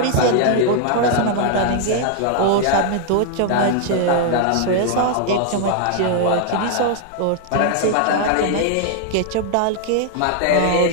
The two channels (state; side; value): different; both; correlation 0.00